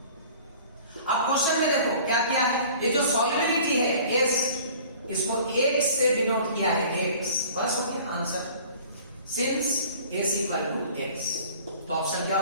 अब क्वेश्चन में देखो क्या किया है? ये जो सॉल्युबिलिटी है S, इसको X से डिनोट किया है, X। बस हो गया answer, since S equal to X। तो ऑप्शन क्या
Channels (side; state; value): both; inverted; correlation -0.47